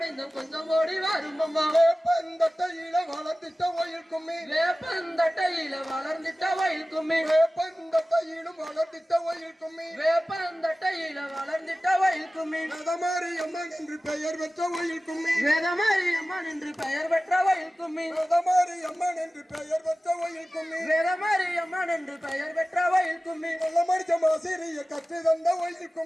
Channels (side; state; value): both; normal; correlation 0.96